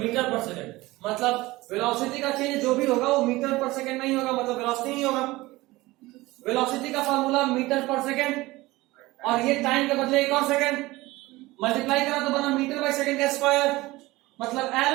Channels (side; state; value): left; quieter; 19.8 dB